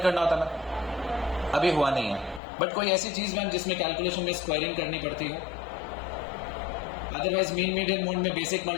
होता ना, अभी हुआ नहीं है। बट कोई ऐसी चीज मैम जिसमें कैलकुलेशन में स्क्वायरिंग करनी पड़ती है, अदरवाइज मीन मीडियन मोड में बेसिक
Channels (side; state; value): right; drops out; at 2.4 s